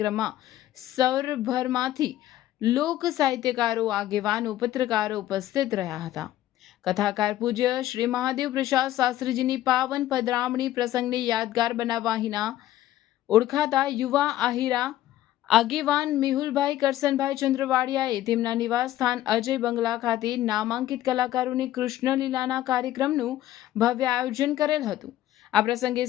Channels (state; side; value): quieter; right; 13.7 dB